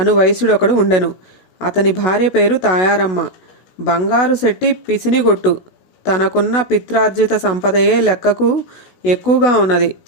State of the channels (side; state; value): right; late; 16 ms